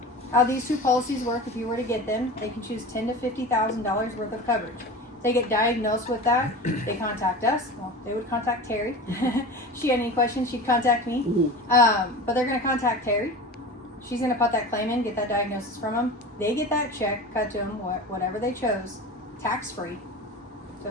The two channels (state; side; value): normal; both; correlation 0.32